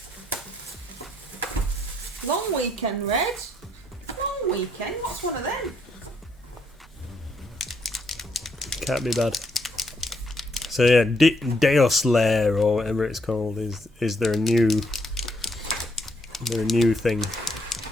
Long weekend, Red. Long weekend. What's one of them? Can't be bad. So yeah, Deos Lair or whatever it's called is their new thing.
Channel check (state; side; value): normal; both; correlation 0.73